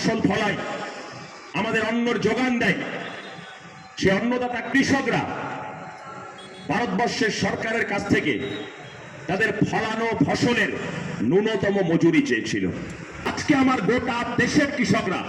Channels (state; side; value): identical; both; correlation 1.00